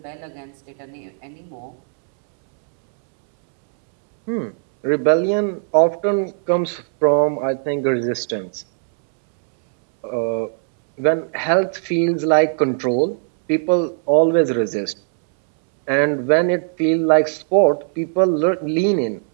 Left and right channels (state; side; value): silent; left; 66 dB below the other